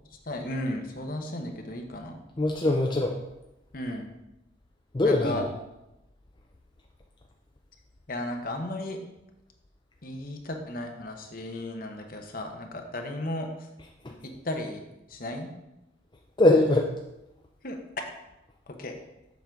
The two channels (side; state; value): both; normal; correlation 0.58